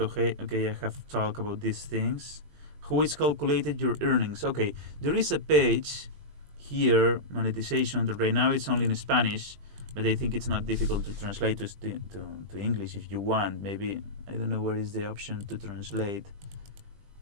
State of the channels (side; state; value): left; late; 20 ms